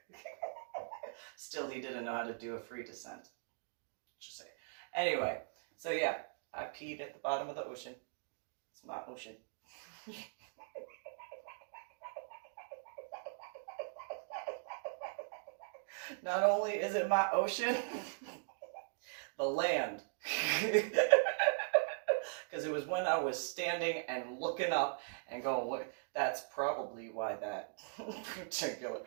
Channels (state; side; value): silent; left; digital silence